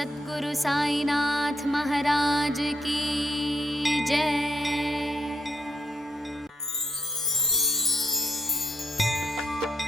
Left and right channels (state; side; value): normal; both; correlation 0.75